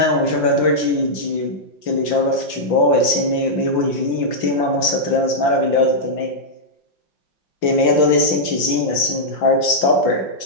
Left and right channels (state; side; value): late; right; 5.8 ms